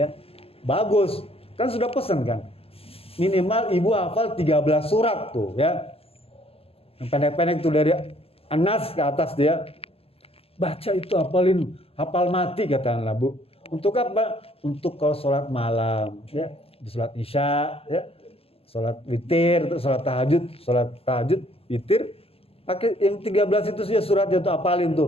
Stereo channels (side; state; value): right; late; 0.28 ms